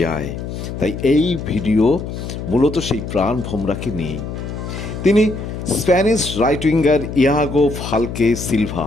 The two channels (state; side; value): noise; left; hum, 7 dB below the sound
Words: যায়। তাই এই ভিডিও মূলত সেই প্রাণভোমরাকে নিয়েই। তিনি Spanish right winger ইয়াগো Phalke